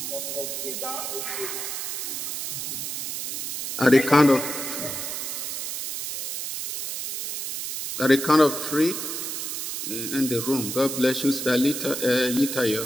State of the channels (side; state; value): right; noise; hiss, 4 dB below the sound